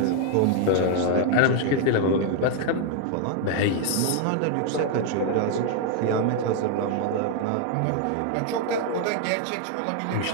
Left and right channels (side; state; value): both; different; correlation 0.00